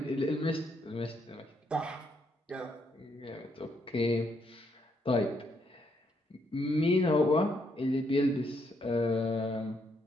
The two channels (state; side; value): normal; both; correlation 0.75